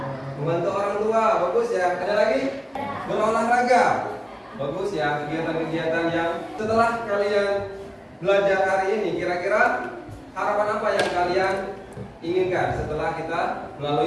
Membantu orang tua, bagus ya. Ada lagi? Berolahraga, bagus ya. Kegiatan-kegiatan yang setelah kalian belajar hari ini, kira-kira harapan apa yang kalian inginkan setelah kita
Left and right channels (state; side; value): identical; both; correlation 1.00